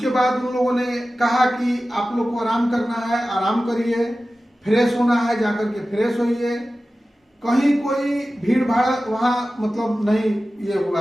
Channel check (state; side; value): normal; both; correlation 0.95